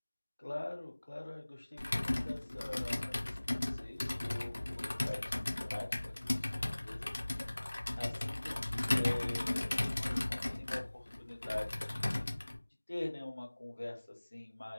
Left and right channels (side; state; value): both; inverted; correlation -1.00